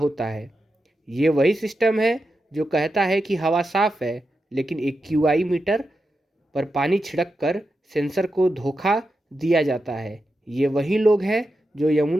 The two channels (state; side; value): normal; both; correlation 0.89